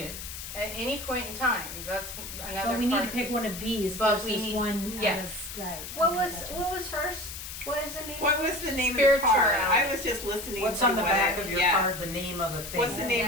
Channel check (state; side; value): noise; left; hiss, 9 dB below the sound